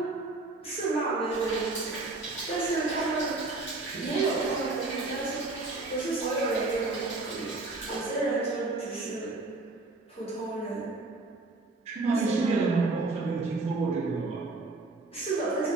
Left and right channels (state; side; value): quieter; left; 3.3 dB